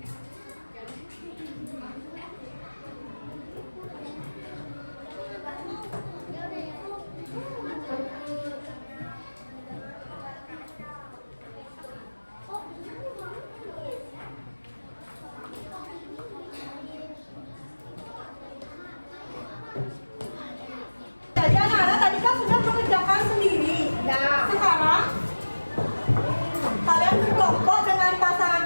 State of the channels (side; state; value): both; inverted; correlation -1.00